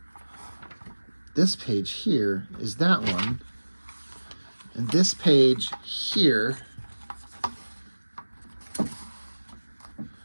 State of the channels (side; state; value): both; inverted; correlation -1.00